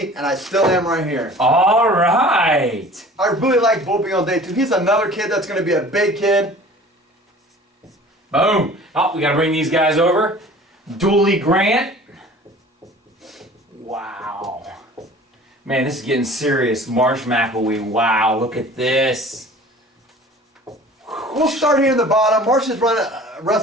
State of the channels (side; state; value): both; normal; correlation 0.45